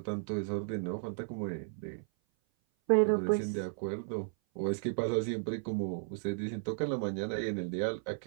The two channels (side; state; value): left; silent; 55 dB below the other